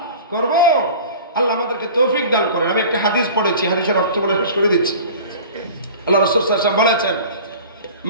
করব। আল্লাহ আমাদেরকে তৌফিক দান করেন। আমি একটা হাদিস পড়েছি, হাদিসের অর্থ বলে শেষ করে দিচ্ছি। আল্লাহ রাসূল সাল্লাল্লাহু আলাইহি ওয়াসাল্লাম বলেছেন,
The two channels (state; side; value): inverted; both; correlation -0.40